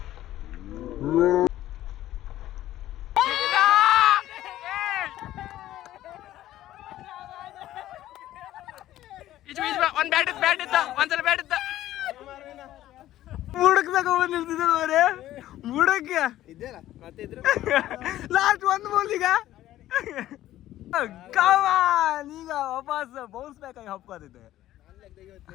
ಒಂದ್ಸಲ ಬ್ಯಾಟ್ ಇತ್ತ ಬುಡಕ್ ತಗೊಂಡ್ ನಿಲ್ತಿದ್ದೆ ಬುಡಕ್ಕೆ ಲಾಸ್ಟ್ 1 ಬಾಲ್. ಈಗ ಈಗ ವಾಪಸ್ ಬೌನ್ಸ್ ಬ್ಯಾಕ್ ಆಗಿ ಹಪ್ಕೋದಿದ್ದೆ.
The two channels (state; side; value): quieter; right; 13.9 dB